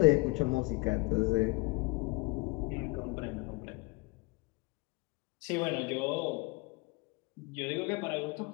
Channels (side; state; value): right; quieter; 24.9 dB